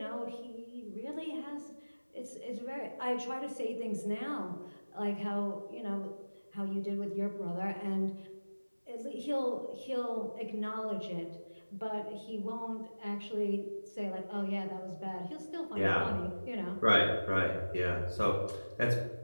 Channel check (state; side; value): inverted; both; correlation -1.00